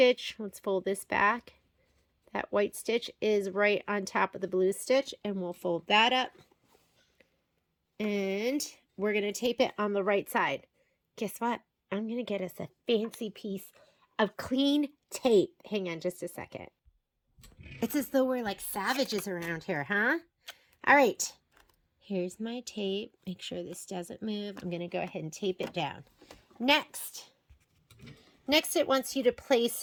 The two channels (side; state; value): both; identical; correlation 1.00